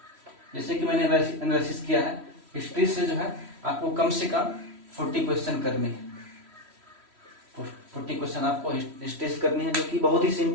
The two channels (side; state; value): left; late; 3.1 ms